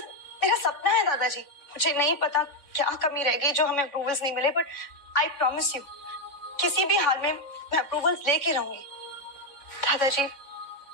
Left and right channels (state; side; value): late; right; 3.6 ms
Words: सपना है दादाजी। मुझे नहीं पता क्या कमी रह गई जो हमें अप्रूवल्स नहीं मिले, बट आई प्रॉमिस यू किसी भी हाल में मैं अप्रूवल्स लेके रहूंगी। दादाजी